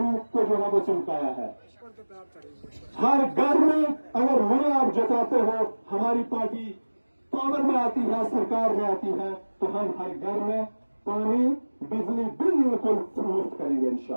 को जो है वो चमकाया है। हर घर में अगर मुझे आप जताते हो हमारी पार्टी पावर में आती है, सरकार में आती है, तो हम हर घर में पानी बिजली बिल्कुल मुफ्त करेंगे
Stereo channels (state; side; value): inverted; both; correlation -1.00